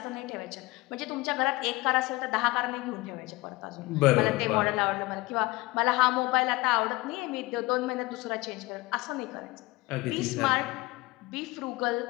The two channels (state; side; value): quieter; right; 21.6 dB